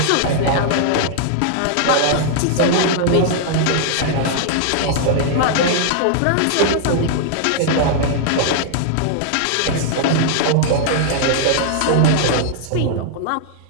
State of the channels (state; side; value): different; both; correlation -0.01